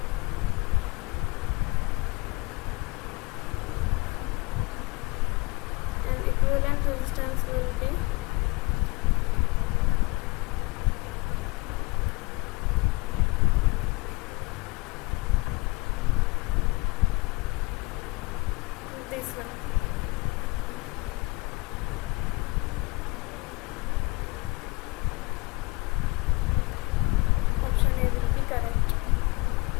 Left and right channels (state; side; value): quieter; right; 25.0 dB